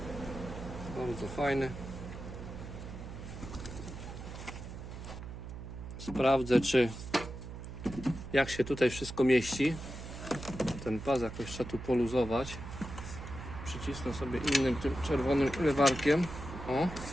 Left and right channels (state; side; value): noise; right; hum, 10 dB below the sound